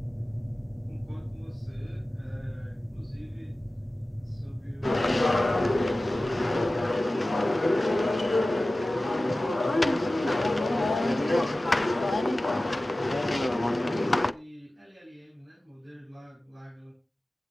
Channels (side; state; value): both; normal; correlation 0.96